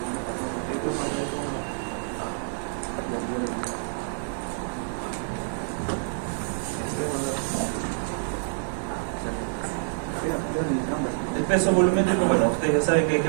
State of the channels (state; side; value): silent; left; digital silence